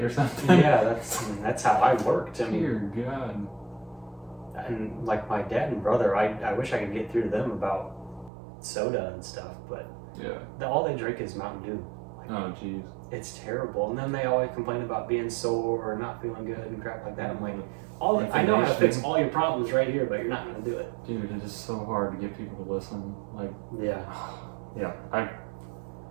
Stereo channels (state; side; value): drops out; left; at 8.3 s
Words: or something. Yeah, that's how I worked. I mean, Dear God. and like my dad and brother, I wish I could get through to them about soda and stuff, but Yeah. all they drink is Mountain Dew. Like, Oh jeez. it's terrible. And then they always complain about being sore or not feeling good and crap like that. I'm like, I know how to fix all your problems right here, but you're not gonna do it. Dude, it is so hard to get people to listen. Like, Yeah. yeah.